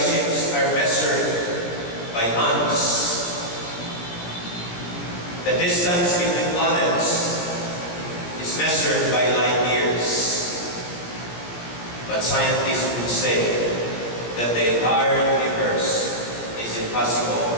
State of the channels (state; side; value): late; right; 17 ms